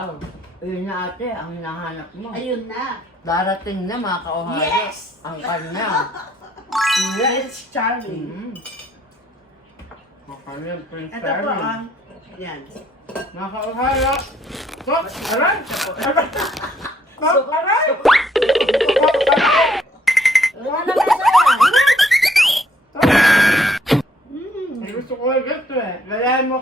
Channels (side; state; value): both; normal; correlation 0.67